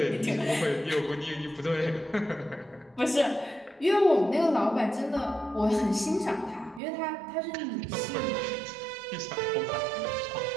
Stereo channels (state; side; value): drops out; left; at 6.8 s